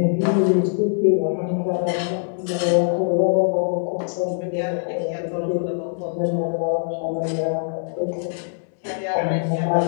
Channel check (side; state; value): right; silent; digital silence